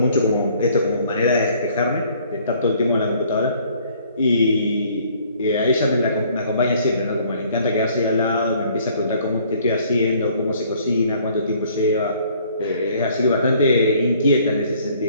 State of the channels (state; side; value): inverted; both; correlation -0.60